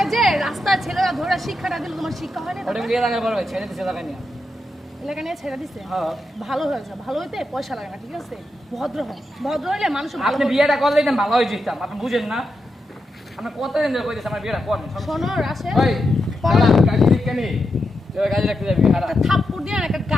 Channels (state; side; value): normal; both; correlation 0.86